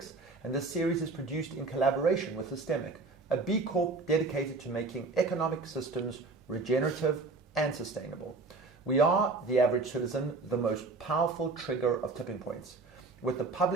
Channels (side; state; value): left; quieter; 3.7 dB